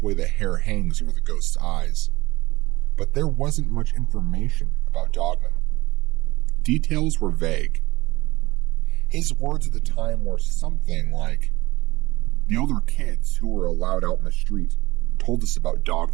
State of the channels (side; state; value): left; quieter; 19.9 dB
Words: way the hair hangs over the ghost's eyes. But there wasn't much information about Dogman. Details were vague. His words at the time were something like, "The older kids who were allowed out in the street told us about